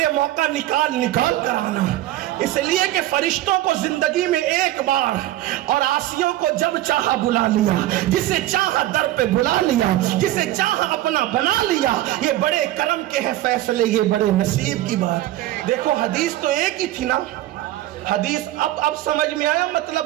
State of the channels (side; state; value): left; quieter; 15.0 dB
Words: موقع نکال کر آنا, اس لیے کہ فرشتوں کو زندگی میں ایک بار اور عاصیوں کو جب چاہا بلا لیا, جسے چاہا در پہ بلا لیا, جسے چاہا اپنا بنا لیا. یہ بڑے کرم کے ہیں فیصلے, یہ بڑے نصیب کی بات. دیکھو حدیث تو ایک ہی تھی نا, حدیث اب سمجھ میں آیا